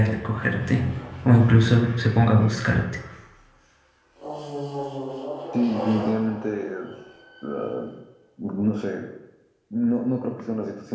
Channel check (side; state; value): both; identical; correlation 1.00